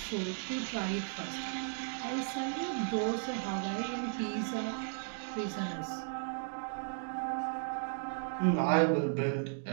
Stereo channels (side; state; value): left; silent; digital silence